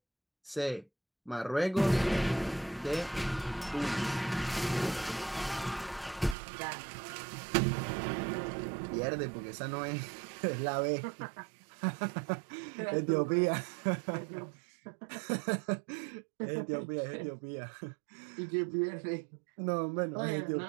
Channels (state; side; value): drops out; left; at 6.4 s